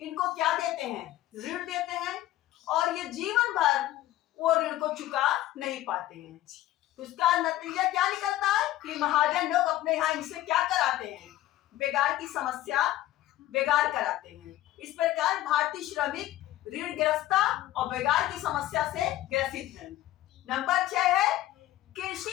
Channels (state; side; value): quieter; right; 14.8 dB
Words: क्या देते हैं, ऋण देते हैं, और ये जीवन भर वो ऋण को चुका नहीं पाते हैं। उसका नतीजा क्या निकलता है कि महाजन लोग अपने यहाँ इनसे क्या कराते हैं, बेगार की समस्या बेगार कराते हैं। इस प्रकार भारतीय श्रमिक ऋणग्रस्तता और बेगार की समस्या से ग्रसित हैं। नंबर 6 है,